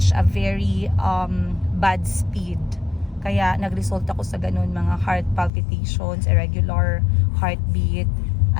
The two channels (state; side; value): drops out; right; at 5.5 s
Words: a very bad speed. Kaya nag-result ako sa ganun, mga heart palpitations, irregular heartbeat.